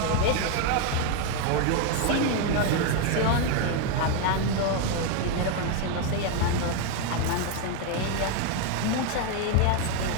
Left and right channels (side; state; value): both; different; correlation 0.01